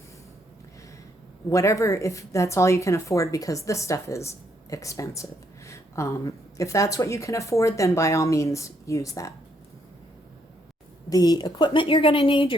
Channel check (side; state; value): both; normal; correlation 0.73